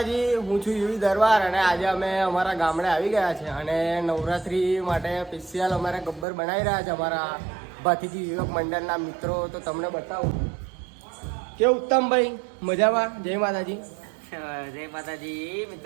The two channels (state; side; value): drops out; left; at 6.2 s